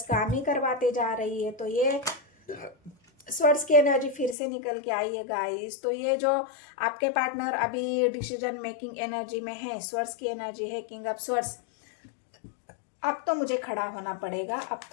काम ही करवाते जा रही है। तो ये स्वर्ड्स की एनर्जी फिर से निकल के आई है गाइस। तो ये जो आपके पार्टनर अभी डिसीजन मेकिंग एनर्जी में है, स्वर्ड्स की एनर्जी है किंग ऑफ स्वर्ड्स। अब तो मुझे खड़ा होना पड़ेगा, अब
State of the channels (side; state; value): right; drops out; at 4.4 s